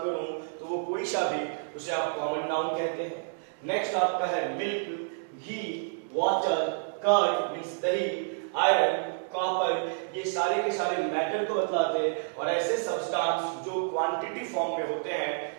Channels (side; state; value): left; silent; digital silence